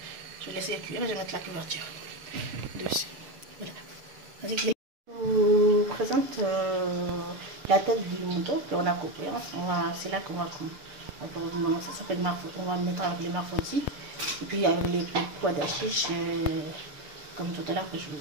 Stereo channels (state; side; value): late; left; 6.8 ms